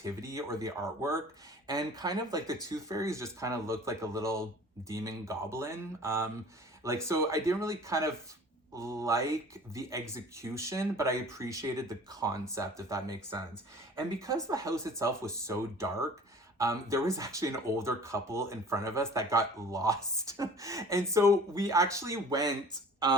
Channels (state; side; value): normal; both; correlation 0.46